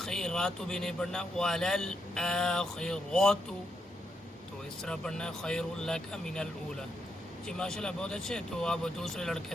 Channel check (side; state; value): both; normal; correlation 0.81